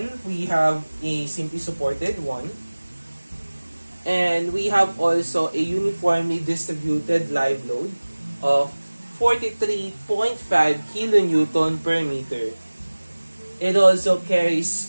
we have a simply supported one. And we have also a uniformly distributed live load of 43.5 kilonewton per meter. It also carries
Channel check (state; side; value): inverted; both; correlation -1.00